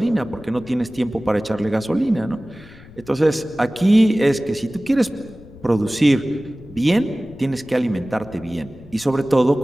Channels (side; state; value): left; noise; rumble, 21 dB below the sound